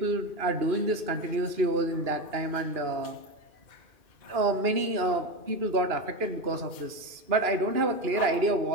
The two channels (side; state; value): left; late; 2.4 ms